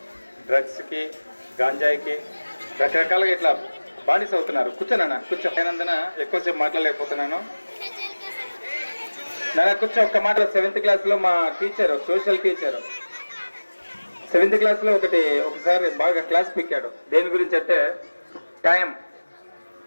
డ్రగ్స్కి, గాంజాయికి రకరకాలుగా ఇట్లా బానిస అవుతున్నారు. కూర్చోనన్నా, కూర్చో. అయినందున ఎక్కువసేపు మాట్లాడలేకపోతున్నాను. నాన్న కూర్చో. ఒక్క మాట. 7th క్లాస్లో మా టీచరు, సోషల్ టీచరు 7th క్లాస్లో ఒకసారి బాగా క్లాస్ పిక్కాడు. దేని గురించి అంటే టైం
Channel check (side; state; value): both; inverted; correlation -1.00